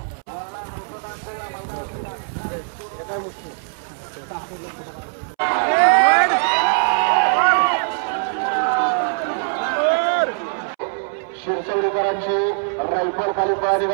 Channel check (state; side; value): silent; left; 65 dB below the other